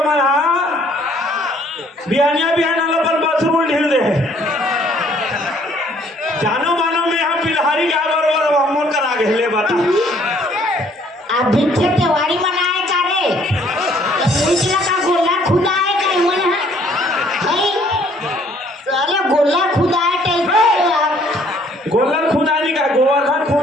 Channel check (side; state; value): both; normal; correlation 0.61